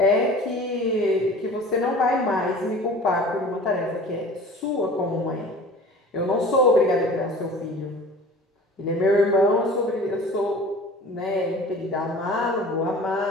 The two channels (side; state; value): both; normal; correlation 0.42